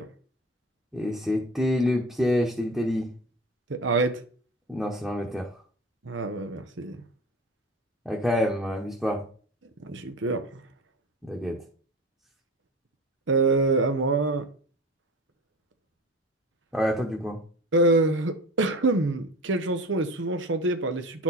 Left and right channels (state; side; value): normal; both; correlation 0.33